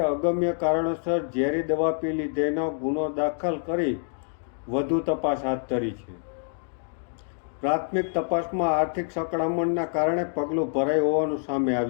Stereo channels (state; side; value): silent; right; digital silence